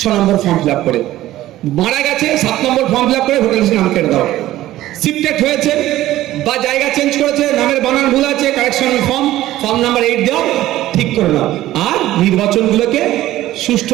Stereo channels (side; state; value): left; quieter; 14.9 dB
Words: 6 নম্বর ফর্ম ফিল আপ করে। মারা গেছে, 7 নম্বর ফর্ম ফিল আপ করে ভোটার লিস্টে নাম কেটে দাও। শিফটেড হয়েছে বা জায়গা চেঞ্জ করেছে, নামের বানান ভুল আছে, কারেকশন ফর্ম নাম্বার 8 দাও, ঠিক করে নাও। আর নির্বাচনগুলোকে